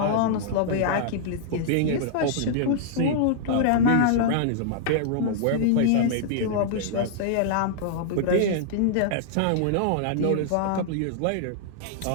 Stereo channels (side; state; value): both; different; correlation -0.01